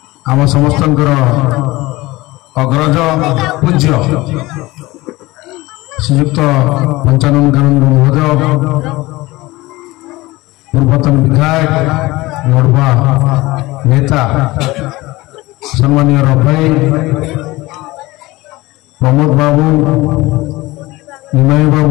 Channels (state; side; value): quieter; right; 20.2 dB